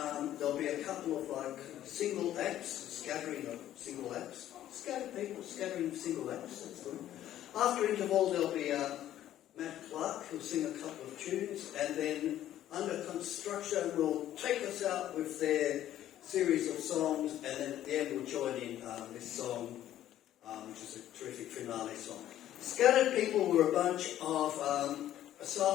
there'll be a couple of single acts, scattering of single acts. Scattered people scattering single acts, that's good. After interval there'll be Matt Clark who'll sing a couple of tunes, and then Under Construction will take us out with their series of songs, and then at the end we'll join in this song, which is a terrific finale song. Scattered people were a bunch of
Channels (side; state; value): right; quieter; 12.3 dB